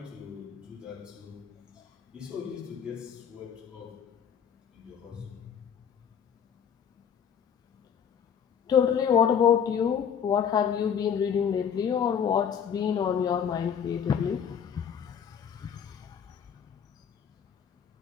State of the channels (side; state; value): right; quieter; 7.9 dB